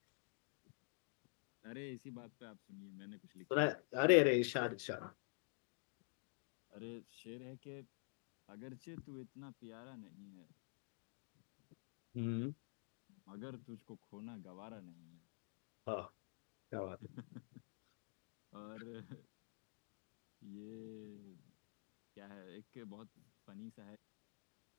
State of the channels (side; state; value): right; silent; digital silence